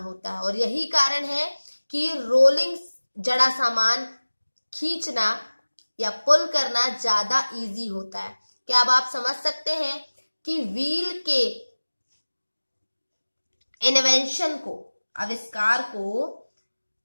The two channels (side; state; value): both; inverted; correlation -1.00